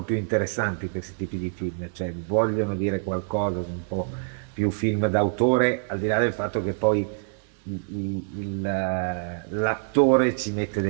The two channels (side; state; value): left; silent; 61 dB below the other